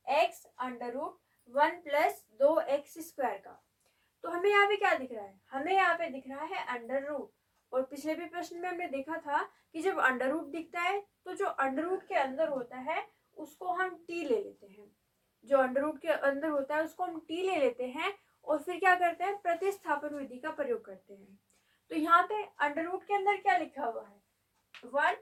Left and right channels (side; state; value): both; identical; correlation 1.00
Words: x under root 1 plus 2x² का। तो हमें यहाँ पे क्या दिख रहा है? हमें यहाँ पे दिख रहा है अंडर रूट। और पिछले भी प्रश्न में हमने देखा था कि जब अंडर रूट दिखता है तो जो अंडर रूट के अंदर होता है उसको हम t ले लेते हैं। जो अंडर रूट के अंदर होता है उसको हम t ले लेते हैं और फिर क्या करते हैं, प्रतिस्थापन विधि का प्रयोग करते हैं। तो यहाँ पे अंडर रूट के अंदर क्या लिखा हुआ है?